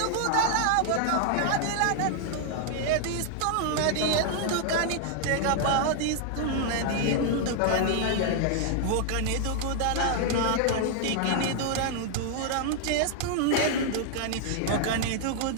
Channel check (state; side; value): different; both; correlation 0.00